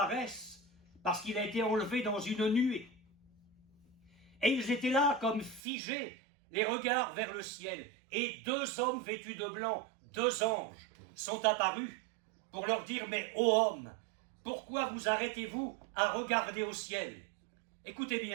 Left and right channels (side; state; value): left; drops out; at 5.6 s